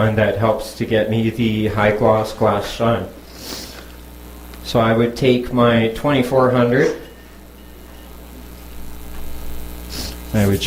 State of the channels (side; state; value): both; identical; correlation 1.00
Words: that helps to get me the high gloss glass shine. So I would take my 2400, I would